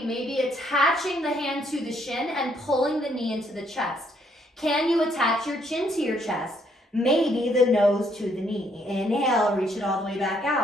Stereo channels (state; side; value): normal; both; correlation 0.70